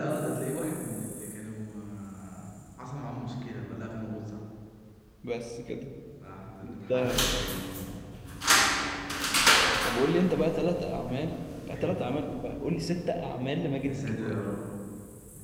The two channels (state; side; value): identical; both; correlation 1.00